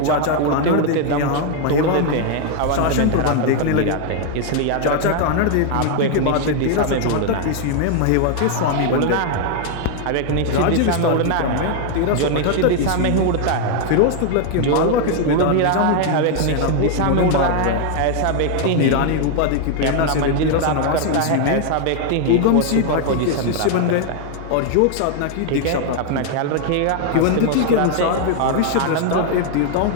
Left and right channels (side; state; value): both; different; correlation 0.00